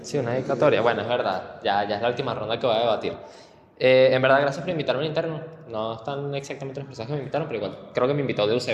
Sí, una dedicatoria. Bueno, es verdad. Ya es la última ronda que voy a debatir. En verdad, gracias por invitarme al interno. No están exactamente las personas que me invitaron, pero igual creo que me invitó de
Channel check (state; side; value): identical; both; correlation 1.00